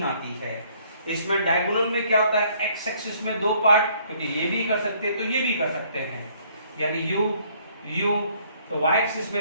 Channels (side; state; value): both; inverted; correlation -0.63